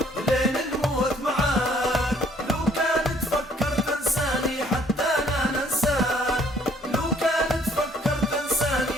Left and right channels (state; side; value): normal; both; correlation 0.61